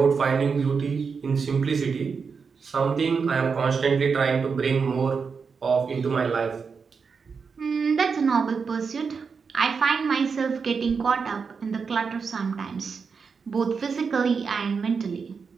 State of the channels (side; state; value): left; quieter; 5.5 dB